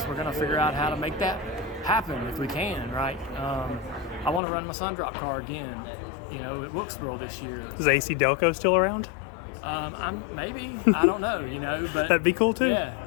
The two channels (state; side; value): drops out; right; at 4.4 s